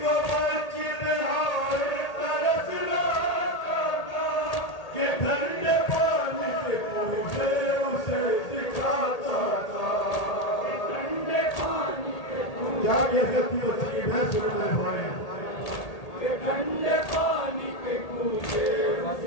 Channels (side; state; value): right; late; 1.8 ms